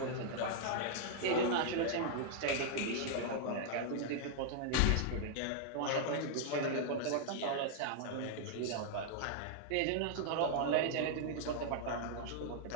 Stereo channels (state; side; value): different; both; correlation -0.01